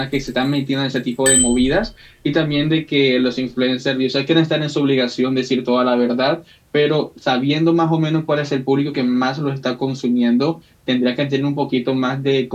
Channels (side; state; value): both; identical; correlation 1.00